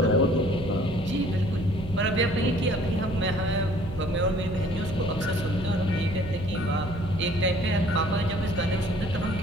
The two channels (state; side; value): noise; right; hum, 12 dB below the sound